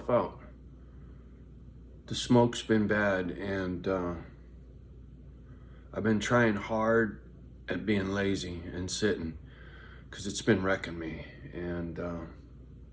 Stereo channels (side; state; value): both; identical; correlation 1.00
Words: out. The smoke's been bad and I've been trying hard at being lazy and sitting because it's been wrecking me. And